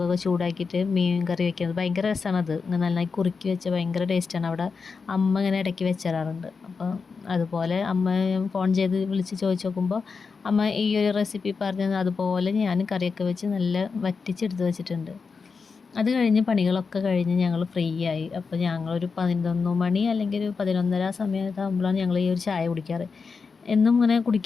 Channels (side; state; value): right; quieter; 5.0 dB